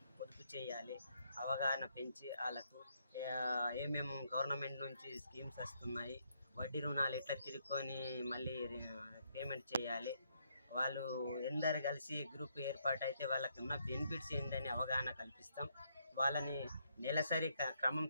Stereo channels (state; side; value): inverted; both; correlation -0.75